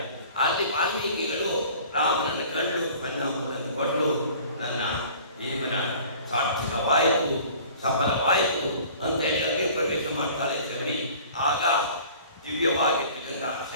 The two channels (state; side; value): inverted; both; correlation -0.47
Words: ಅಲ್ಲಿ ವಾಲ್ಮೀಕಿಗಳು ರಾಮನನ್ನು ಕಂಡು ಕಣ್ಣನ್ನು ಕೊಟ್ಟು ನನ್ನ ಜೀವನ ಸಾರ್ಥಕವಾಯಿತು, ಸಫಲವಾಯಿತು ಅಂತೇಳಿ ಅಗ್ನಿ ಪ್ರವೇಶ ಮಾಡ್ತಾರೆ ಶಬರಿ. ಆಗ ದಿವ್ಯವಾಗಿರ್ತಕ್ಕಂಥ